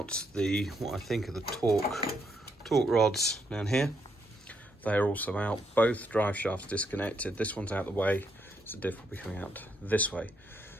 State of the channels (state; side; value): normal; both; correlation 0.76